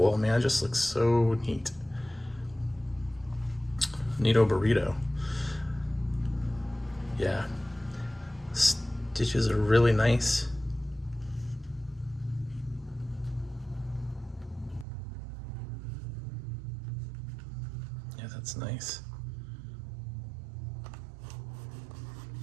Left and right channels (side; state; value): left; drops out; at 14.9 s